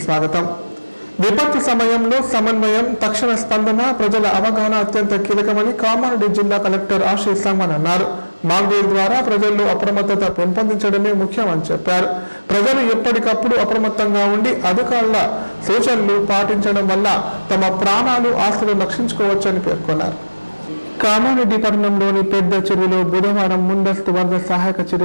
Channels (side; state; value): both; inverted; correlation -1.00